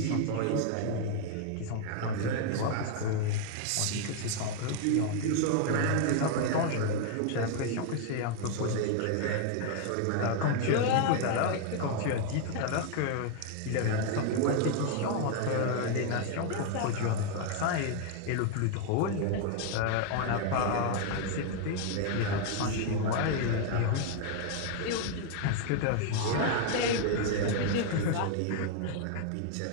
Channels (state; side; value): different; both; correlation 0.00